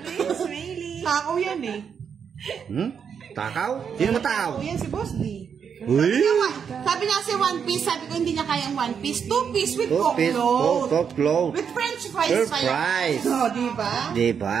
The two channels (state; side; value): quieter; left; 7.1 dB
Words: Sorry, Smaily. Takaw yan eh. Takaw? Sino mo takaw? Takaw yan si Boss D. Uy! Sabi niya kasi 1 piece, sabi ko hindi niya kaya ang 1 piece. 2 piece with Coke float. Coke float. With French fries. Fries. Oh, diba?